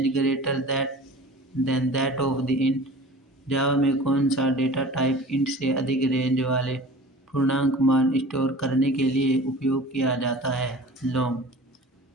greater than that of the int? Java में कौन सा data type int से अधिक रेंज वाले पूर्णांक मान स्टोर करने के लिए उपयोग किया जाता है? लॉन्ग।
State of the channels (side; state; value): both; normal; correlation 0.40